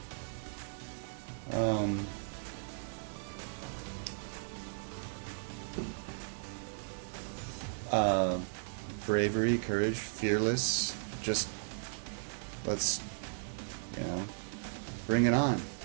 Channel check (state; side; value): silent; left; digital silence